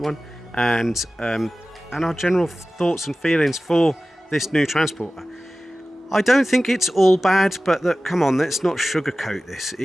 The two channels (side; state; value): both; normal; correlation 0.96